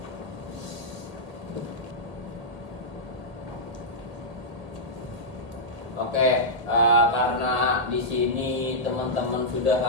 Oke, karena di sini teman-teman sudah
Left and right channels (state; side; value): late; left; 1.8 ms